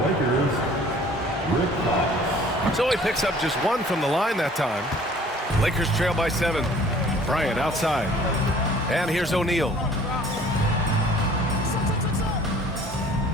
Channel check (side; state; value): both; normal; correlation 0.52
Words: Lakers, Rick Fox. So he picks up just 1 from the line that time. Lakers trail by 7. Bryant outside. And here's O'Neal.